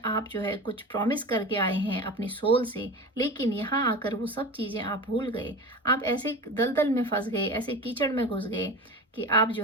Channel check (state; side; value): normal; both; correlation 0.30